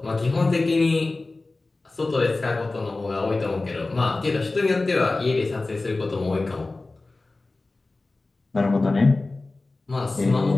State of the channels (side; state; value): right; quieter; 3.3 dB